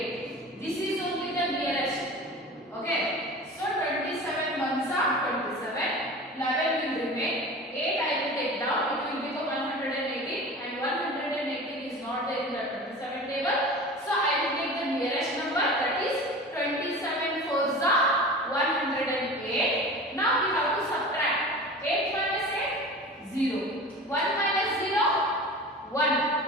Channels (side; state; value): both; normal; correlation 0.36